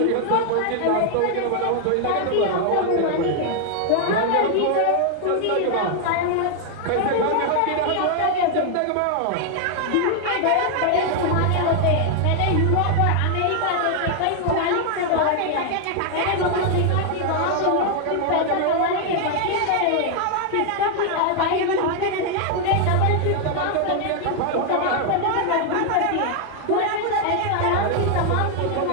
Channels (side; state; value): both; different; correlation 0.00